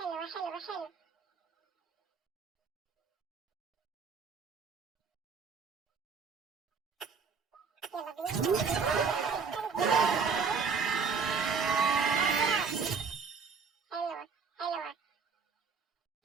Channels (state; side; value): quieter; left; 5.5 dB